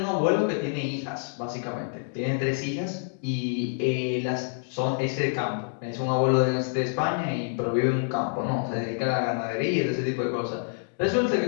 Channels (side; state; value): right; silent; digital silence